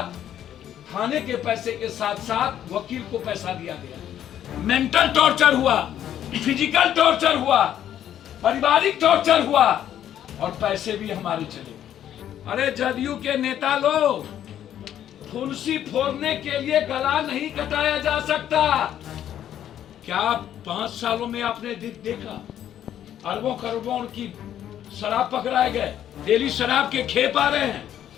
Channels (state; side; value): quieter; right; 10.7 dB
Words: थाने के पैसे के साथ साथ वकील को पैसा दिया गया। मेंटल टॉर्चर हुआ, फिजिकल टॉर्चर हुआ, पारिवारिक टॉर्चर हुआ और पैसे भी हमारे चले। अरे जदयू के नेता लोग, फुंसी फोड़ने के लिए गला नहीं कटाया जा सकता। क्या 5 सालों में आपने देखा अरबों करोड़ों की शराब पकड़ाए गए, डेली शराब के खेप आ रहे हैं,